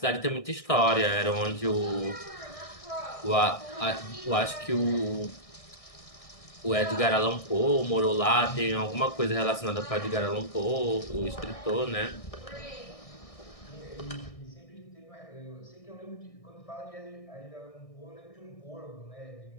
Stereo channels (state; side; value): late; right; 1.6 ms